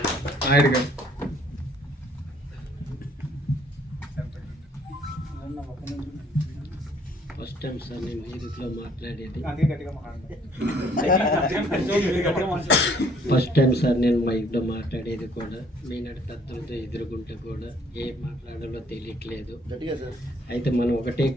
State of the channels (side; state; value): both; normal; correlation 0.62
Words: First time sir నేను మ్యూజిక్లో మాట్లాడేది. ఫస్ట్ టైం సార్ నేను మైక్లో మాట్లాడేది కూడా. మీనాడు పెద్దలతో ఎదుర్కొంటే కూడా ఏం మాట్లాడాలో తెలియట్లేదు. అయితే మనం ఒకటే